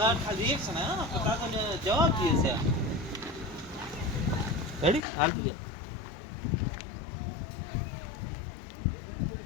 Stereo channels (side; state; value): right; drops out; at 5.0 s